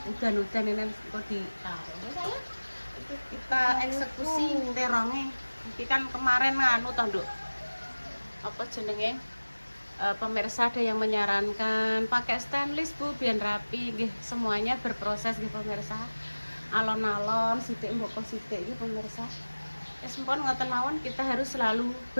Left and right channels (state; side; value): inverted; both; correlation -1.00